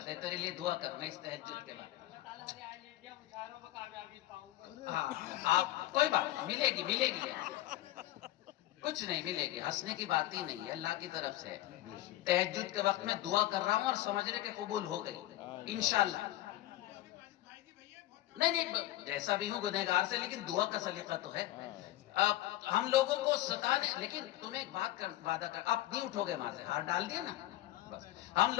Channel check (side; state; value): right; quieter; 15.3 dB